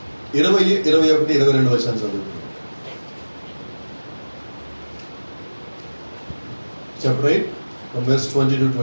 20, 21, 22 వచనాలు చదువుతుంది. Chapter 8 from verse 20 to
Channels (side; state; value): both; inverted; correlation -1.00